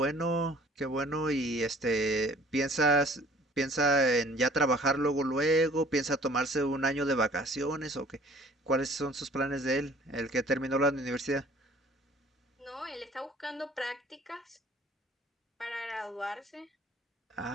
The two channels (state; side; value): normal; both; correlation 0.53